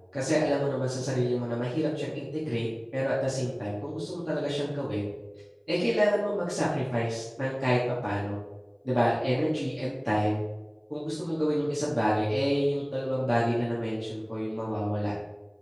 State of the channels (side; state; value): both; identical; correlation 1.00